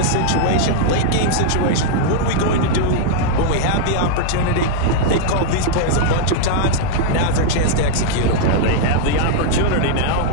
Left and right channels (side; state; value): both; different; correlation -0.01